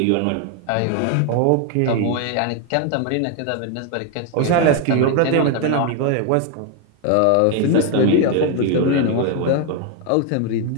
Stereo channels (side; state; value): both; different; correlation 0.01